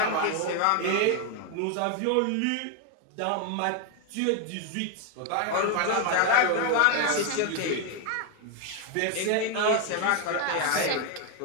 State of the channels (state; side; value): different; both; correlation 0.01